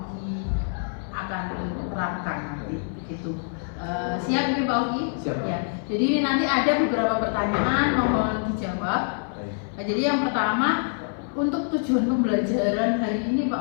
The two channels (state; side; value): silent; right; 59 dB below the other